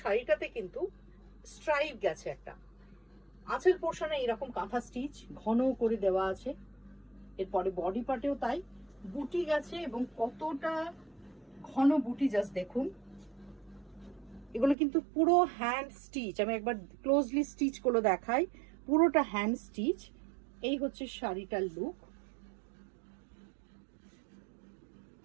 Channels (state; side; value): drops out; left; at 14.8 s